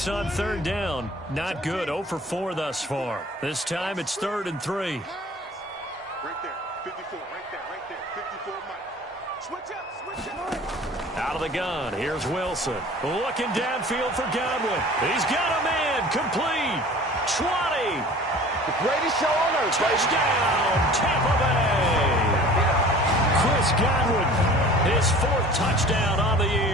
on 3rd down. Not good. 0 for 4 thus far. This time it's 3rd and 3. Right there. 54. Right there. 54, Mike. Switch up. Out of the gun. Here's Wilson. Looking downfield for Godwin. He's got a man. Complete. 20. The greatest show on earth. Touchdown, Tampa Bay. Chris Godwin, his 4th touchdown on the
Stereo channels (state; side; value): normal; both; correlation 0.45